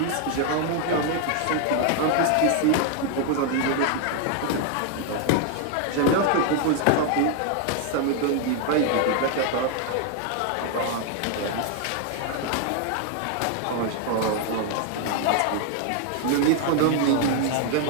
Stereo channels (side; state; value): both; different; correlation 0.00